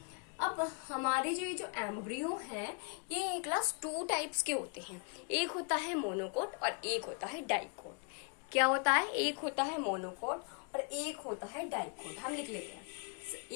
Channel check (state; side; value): quieter; right; 38.1 dB